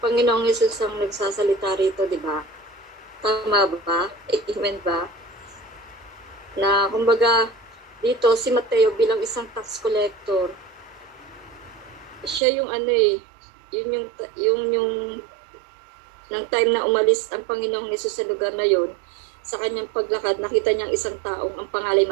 Panginoong Hesus ang nagsasalita rito, di ba? Tama ba? Amen ba? Na kumbaga dito si Mateo bilang isang tax collector, siya yung yung ng time na umalis ang Panginoong Hesus sa lugar na yon, sa kanyang paglakad, nakita niyang isang taong ang pangalan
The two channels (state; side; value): drops out; left; at 12.4 s